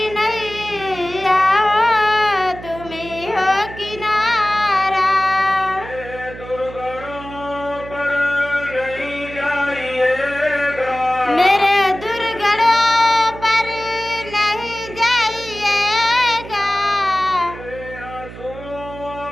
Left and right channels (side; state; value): right; noise; hum, 14 dB below the sound